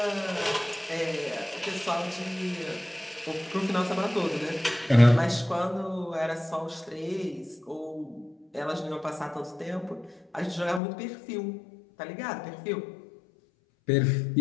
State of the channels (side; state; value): right; drops out; at 10.8 s